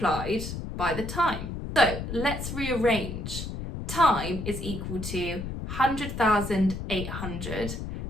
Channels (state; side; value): noise; left; rumble, 6 dB below the sound